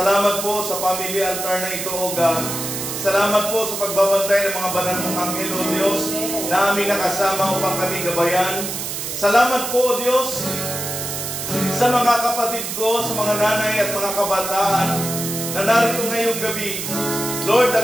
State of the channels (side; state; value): right; noise; hiss, 5 dB below the sound